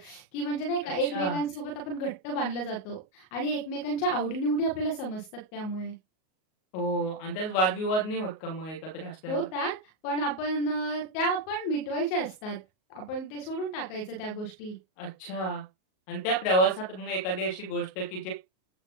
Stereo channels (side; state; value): right; late; 38 ms